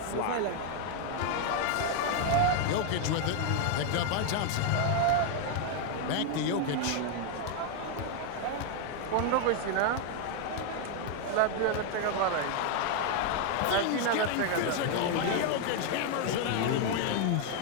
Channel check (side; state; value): both; different; correlation 0.01